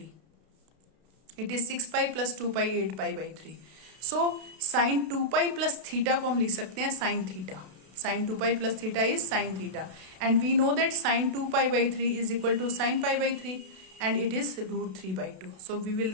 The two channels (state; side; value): late; left; 32 ms